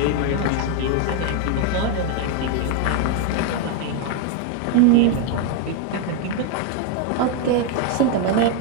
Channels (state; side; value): different; both; correlation 0.01